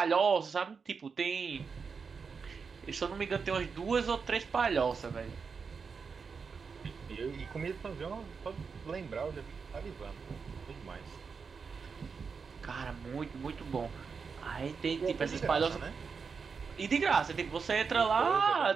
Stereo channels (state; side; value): quieter; left; 5.5 dB